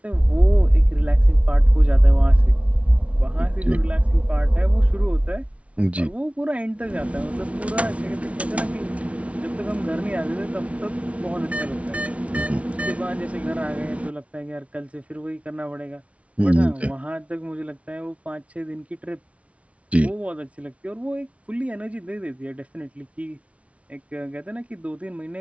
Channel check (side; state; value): left; late; 0.064 ms